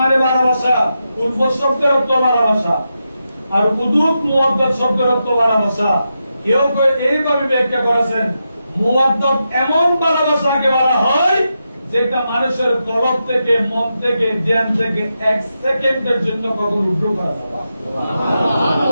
ভালোবাসা, উলফত শব্দের অর্থ ভালোবাসা, আর উদুদ মুওয়াদ্দাত শব্দের অর্থ ভালোবাসা। কেউ কেউ এইভাবে ব্যাখ্যা করেছেন, মুওয়াদ্দাত এমন ভালোবাসাকে বলা হয় যেটা মানুষের কলব থেকে, মন থেকে, জ্ঞান থেকে এক সেকেন্ডের জন্য কখনো উঠো করা যায় না।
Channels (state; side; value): inverted; both; correlation -0.87